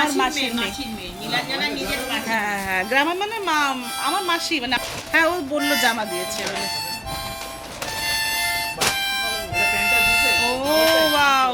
মাসির মেয়ে। মাসির মেয়ে। নীলাঞ্জনা নিজের মাসি। হ্যাঁ হ্যাঁ, গ্রামের মানে আমার মাসি মানে। হ্যাঁ ও বললো জামা দিয়েছে বলে। ও ওয়াও,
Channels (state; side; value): identical; both; correlation 1.00